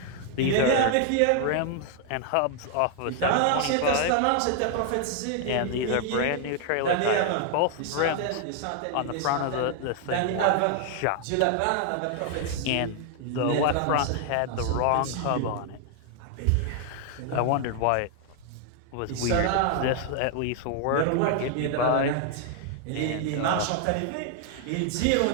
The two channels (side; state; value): both; different; correlation 0.00